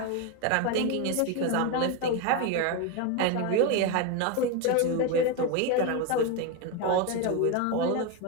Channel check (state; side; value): different; both; correlation 0.03